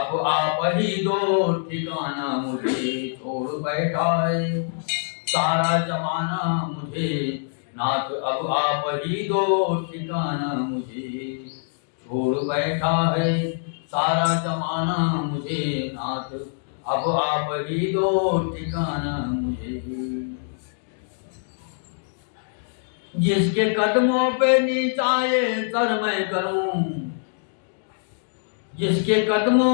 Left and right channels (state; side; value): silent; right; digital silence